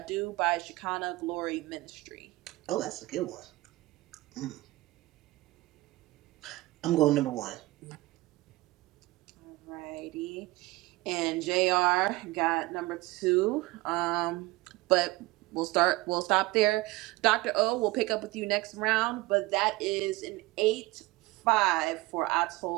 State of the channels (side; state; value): left; quieter; 20.3 dB